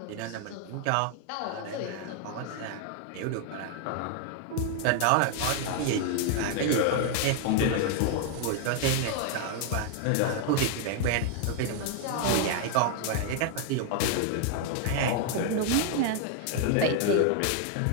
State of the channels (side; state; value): both; different; correlation 0.00